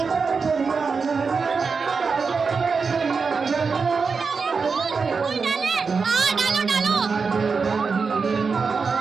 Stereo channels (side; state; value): left; quieter; 5.0 dB